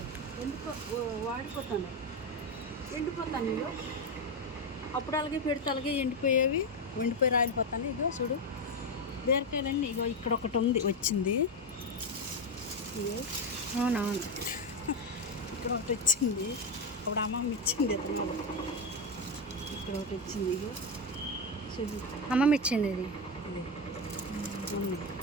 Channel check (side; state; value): both; normal; correlation 0.11